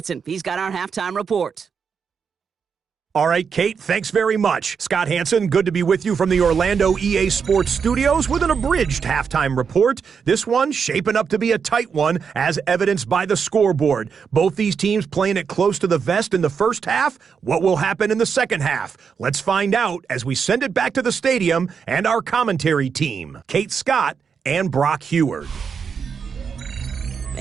He's got our halftime report. All right, Kate, thanks very much. Scott Hanson, good to be with you from the Orlando EA Sports Studios with an abridged halftime report. This one shaping up to be a tight one, as evidenced by the scoreboard. Both these teams playing it close to the vest in the first half. What will happen in the second half? Let's find out as we send it back to the stadium and our commentary team, Kate Scott and Brock Heward.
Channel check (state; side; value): quieter; left; 6.3 dB